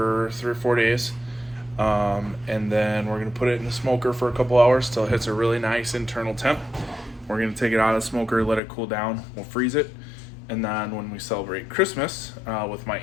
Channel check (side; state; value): right; drops out; at 8.6 s